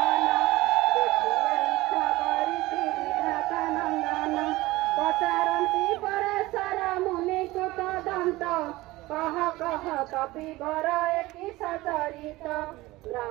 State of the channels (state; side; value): quieter; left; 19.3 dB